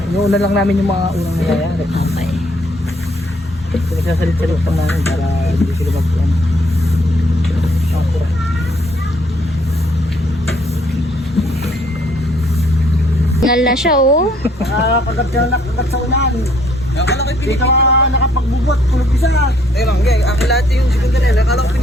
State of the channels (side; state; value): both; normal; correlation 0.65